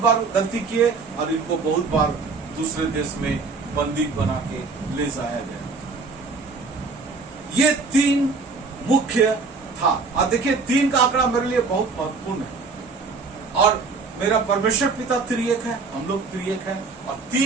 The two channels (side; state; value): left; quieter; 4.3 dB